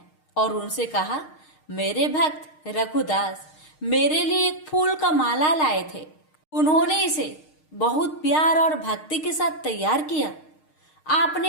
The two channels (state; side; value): late; right; 6.5 ms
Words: और उनसे कहा, मेरे भक्त रघुदास मेरे लिए एक फूल का माला लाए थे। उन्होंने इसे बहुत प्यार और भक्ति के साथ तैयार किया।